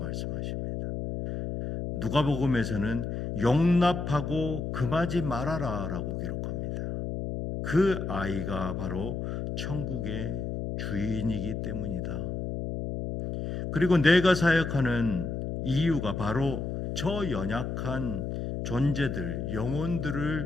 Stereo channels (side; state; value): left; noise; hum, 4 dB below the sound